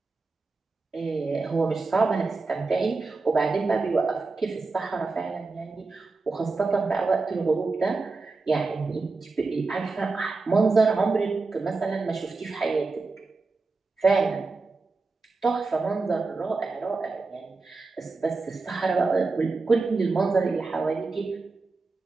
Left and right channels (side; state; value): left; quieter; 3.9 dB